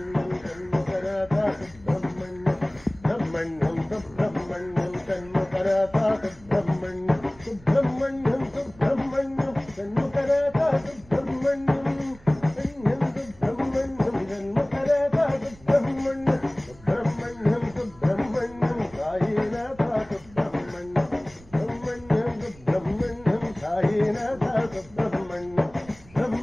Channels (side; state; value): right; noise; rumble, 23 dB below the sound